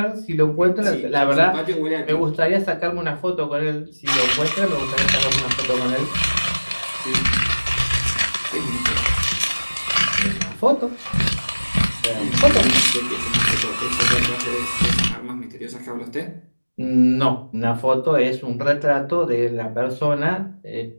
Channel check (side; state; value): both; inverted; correlation -1.00